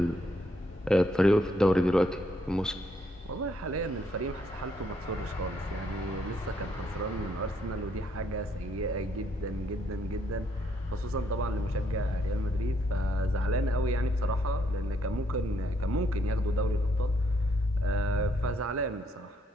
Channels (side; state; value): both; normal; correlation 0.72